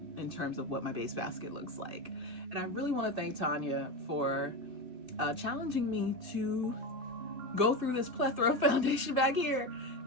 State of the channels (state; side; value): late; left; 2.6 ms